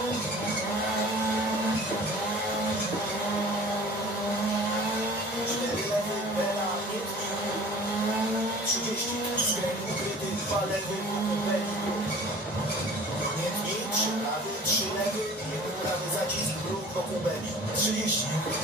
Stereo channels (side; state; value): both; normal; correlation 0.44